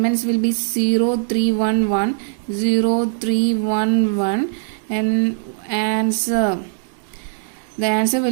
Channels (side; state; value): left; silent; digital silence